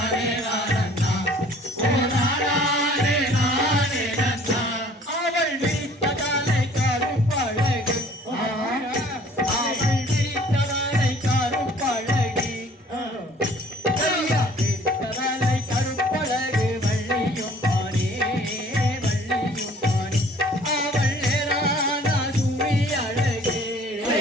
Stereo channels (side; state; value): both; normal; correlation 0.54